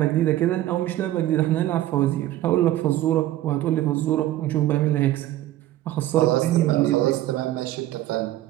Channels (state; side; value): quieter; left; 14.3 dB